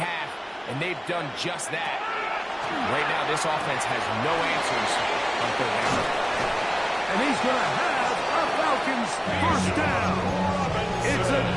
and they've done just that. Right now, this offense has no answers on 3rd down. And he's going to have a Falcons 1st down. It's a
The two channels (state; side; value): identical; both; correlation 1.00